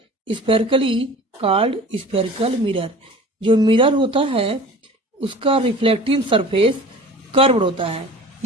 spherically called spherical mirror। जो मिरर होता है उसका रिफ्लेक्टिंग सरफेस कर्व्ड होता है।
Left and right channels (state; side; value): normal; both; correlation 0.42